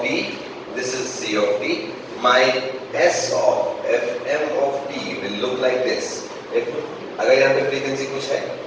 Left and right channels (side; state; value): both; identical; correlation 1.00